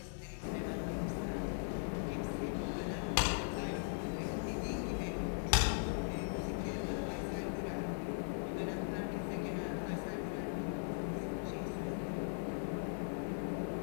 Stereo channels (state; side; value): silent; right; digital silence